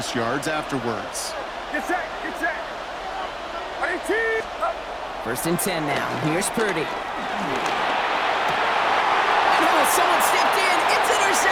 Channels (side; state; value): both; identical; correlation 1.00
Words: yards afterwards. Get set, get set. 18. 1st and 10 now. Here's Purdy. Oh, someone stepped in. It's